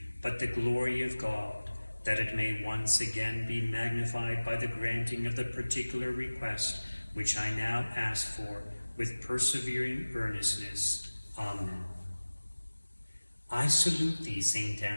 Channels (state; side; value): inverted; both; correlation -1.00